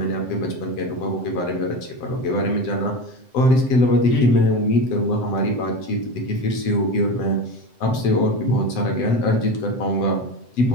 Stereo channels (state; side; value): late; right; 7.8 ms